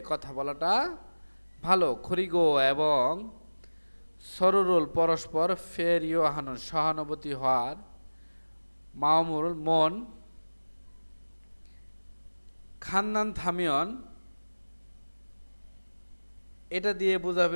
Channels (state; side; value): inverted; both; correlation -1.00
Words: কথা বলাটা ভালো। খরিগো এবং সরুরুল পরস্পর ফেরিও হানুন সহানুভূতি হওয়ার, মামুল মন খান্নান থামিয়ন এটা দিয়ে